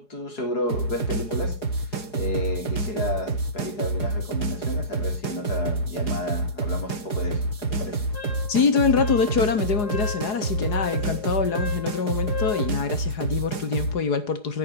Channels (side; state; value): right; late; 4.8 ms